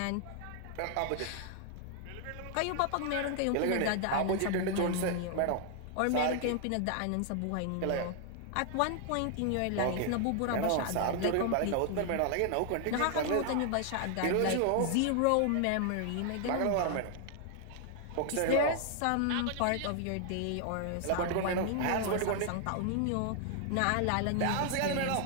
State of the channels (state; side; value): different; both; correlation 0.00